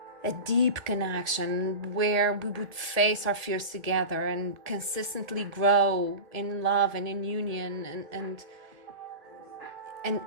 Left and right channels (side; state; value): left; late; 1.8 ms